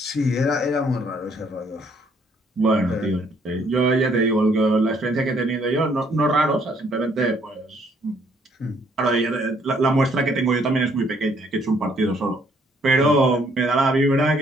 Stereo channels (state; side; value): normal; both; correlation 0.66